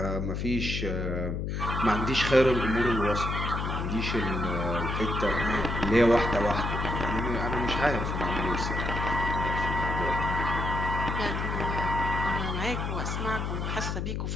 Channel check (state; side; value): noise; left; hum, 2 dB below the sound